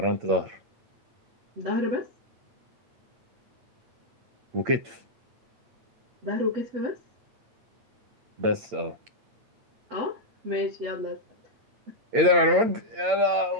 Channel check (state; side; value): late; left; 8.7 ms